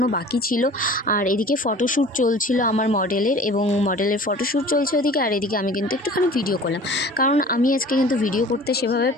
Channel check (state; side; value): normal; both; correlation 0.44